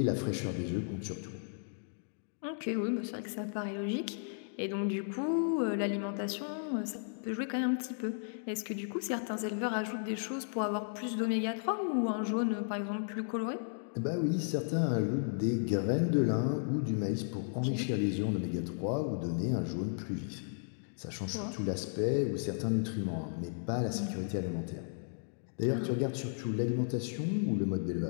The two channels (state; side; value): silent; right; digital silence